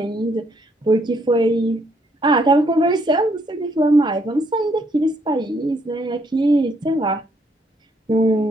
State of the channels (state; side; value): normal; both; correlation 0.70